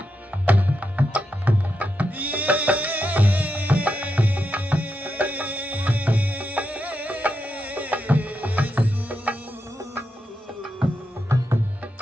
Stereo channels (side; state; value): both; normal; correlation 0.85